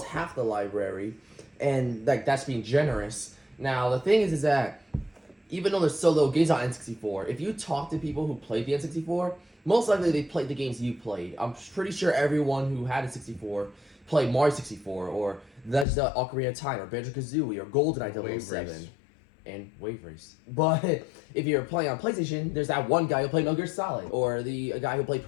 half the library, and, like, that's being generous. Now, the thing is that, even though there's so little games on N64, if you talk to people who played the N64, most likely they played the games you played. I'm pretty sure everyone who had a 64 played Mario 64, or Legend of Ocarina of Time, or Banjo-Kazooie, or GoldenEye Wave 007, Race. and Wave Race. But if you're playing on PlayStation, there's that one guy who played Metal Gear Solid, or the guy who played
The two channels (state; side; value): drops out; right; at 15.9 s